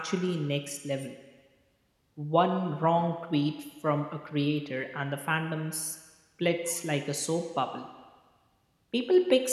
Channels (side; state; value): both; identical; correlation 1.00